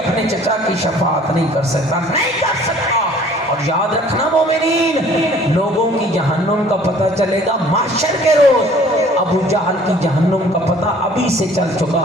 چچا کی شفاعت نہیں کر سکتا؟ نہیں کر سکتا. اور یاد رکھنا مومنین، لوگوں کی جہنم کا پتہ چلے گا محشر کے روز. ابو جہل کی جہنم کا پتہ ابھی سے چل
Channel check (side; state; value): both; normal; correlation 0.53